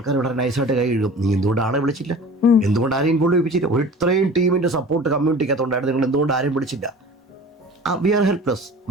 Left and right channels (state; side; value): normal; both; correlation 0.41